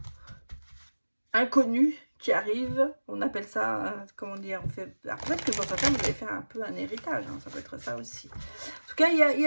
inconnu qui arrive, on appelle ça, comment dire, on fait... Alors, peut-être que pour certains, vous allez faire un peu un héritage, hein, ça peut être ça aussi. En tout cas,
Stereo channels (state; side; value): inverted; both; correlation -1.00